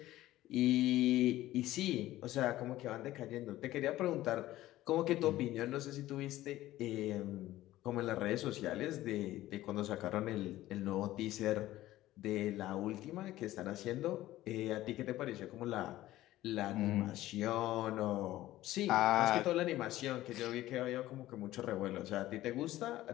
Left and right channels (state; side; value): quieter; right; 15.4 dB